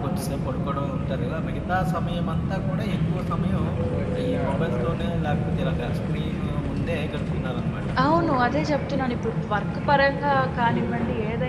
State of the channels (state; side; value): identical; both; correlation 1.00